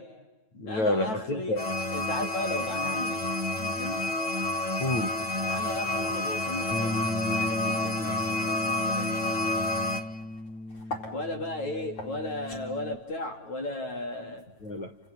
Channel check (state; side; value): late; right; 9.1 ms